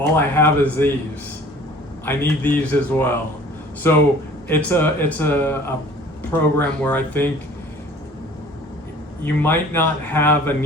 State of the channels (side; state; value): both; normal; correlation 0.49